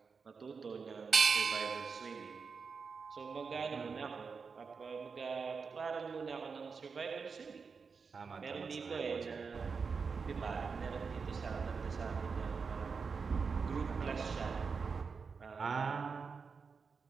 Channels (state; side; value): quieter; left; 5.3 dB